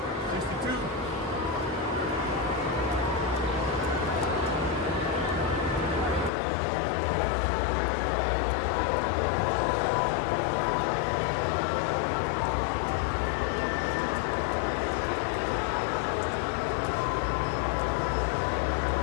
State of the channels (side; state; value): right; drops out; at 6.3 s